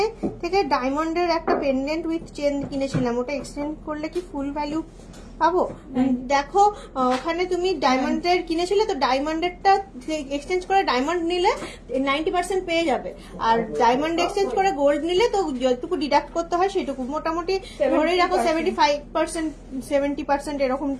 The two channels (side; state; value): both; identical; correlation 1.00